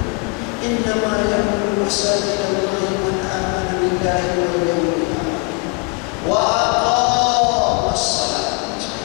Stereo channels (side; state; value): right; quieter; 30.5 dB